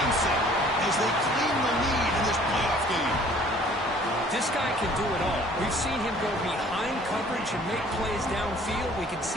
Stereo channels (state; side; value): normal; both; correlation 0.54